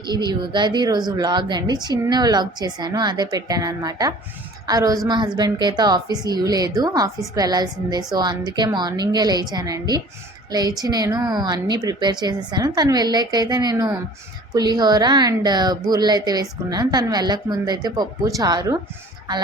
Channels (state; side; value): normal; both; correlation 0.47